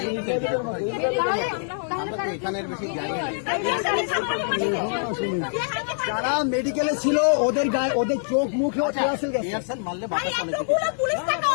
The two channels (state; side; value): silent; right; 62 dB below the other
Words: তো, আমরা তো এখানের বেশি যাই না। যারা মেডিকেলে ছিল ওদের গায়ে ওদের চোখ মুখেও টিয়ারশেল গেছে। টিয়ারশেল মারলে ভাই বাতাস অনেক এতগুলো পুলিশ থাকা